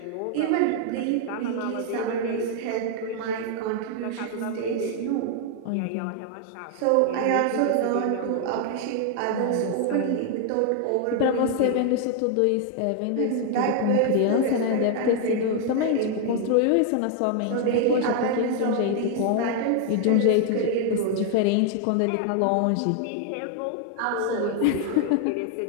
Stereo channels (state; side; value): different; both; correlation 0.00